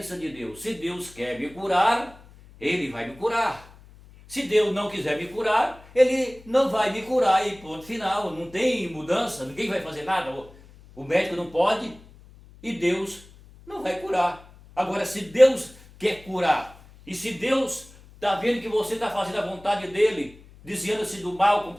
de Deus. Se Deus quer me curar, Ele vai me curar. Se Deus não quiser me curar, Ele não vai me curar e ponto final. Não tem mudança, ninguém vai fazer nada. O médico não pode e Deus não vai curar. Agora, se Deus quer curar, e se Deus está vendo que você está fazendo a vontade dEle, desviando-se do mal, como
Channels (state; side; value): noise; left; hum, 23 dB below the sound